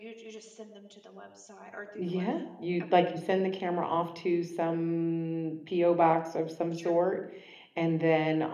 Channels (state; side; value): identical; both; correlation 1.00